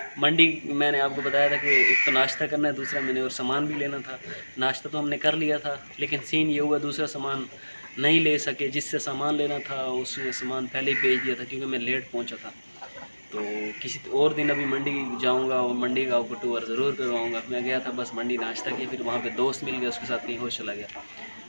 मंडी मैंने आपको बताया था कि एक तो नाश्ता करना है, दूसरा मैंने और सामान भी लेना था। नाश्ता तो हमने कर लिया था, लेकिन सीन ये हुआ दूसरा सामान नहीं ले सके। जिससे सामान लेना था उसने सामान पहले ही भेज दिया था क्योंकि मैं लेट पहुंचा था। तो किसी और दिन अभी मंडी जाऊंगा और मंडी का आपको टूर ज़रूर करवाऊंगा। मैं गया था बस मंडी नाश्ता किया, फिर वहाँ पे दोस्त मिल गया, उसके साथ कहीं और चला गया।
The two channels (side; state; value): both; inverted; correlation -1.00